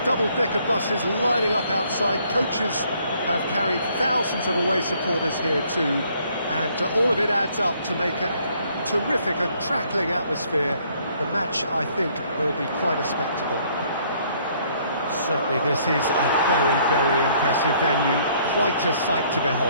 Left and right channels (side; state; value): both; inverted; correlation -0.64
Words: double-decker buses lining up outside. Coaches have carried thousands of away supporters here too, and all of it adds up to make a terrific, a crackling atmosphere. The match, I think, will be quite a spectacle. Certainly this is a very, very impressive venue, quite a sight to